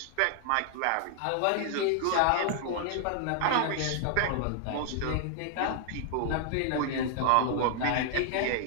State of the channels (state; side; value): different; both; correlation 0.00